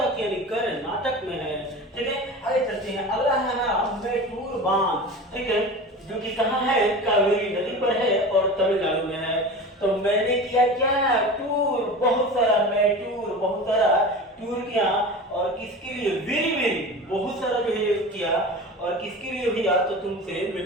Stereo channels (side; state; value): both; normal; correlation 0.33